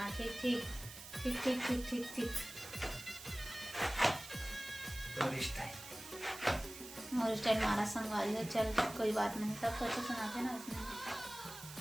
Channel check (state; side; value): noise; right; hiss, 13 dB below the sound